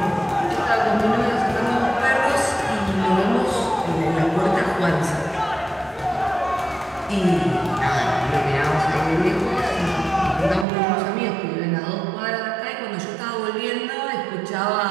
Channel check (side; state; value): left; drops out; at 10.7 s